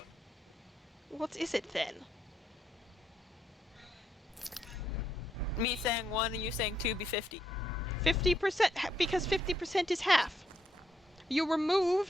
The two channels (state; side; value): normal; both; correlation 0.76